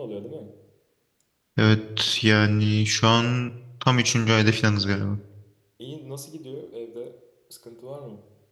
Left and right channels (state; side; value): identical; both; correlation 1.00